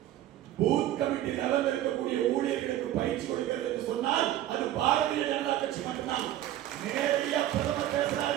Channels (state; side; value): quieter; left; 13.1 dB